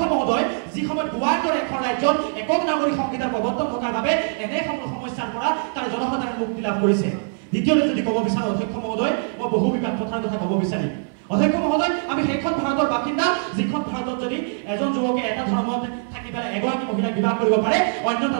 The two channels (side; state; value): left; silent; 64 dB below the other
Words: মহোদয় যি সময়ত গোৱাৰ দৰে এখন ৰাজ্যত একক নাগৰিক সংহিতাৰ প্ৰৱৰ্তন থকাৰ বাবে এনে সমস্যাৰ পৰা তাৰ জনসাধাৰণ মুক্তি লাভ কৰিছে দ্বিতীয়তে যদি ক'ব বিচাৰোঁ অধ্যক্ষ মহোদয় মই বহু বিবাদ কথাৰ কথা ক'ব বিচাৰিম অধ্যক্ষ মহোদয় আমি সেইখন ভাৰতৰ বাসিন্দা যিখন ভাৰতত যদি এজন যুৱকে এটা ধৰ্মত থাকি পেলাই এগৰাকী মহিলাক বিবাহ কৰিব পাৰে অন্য এটা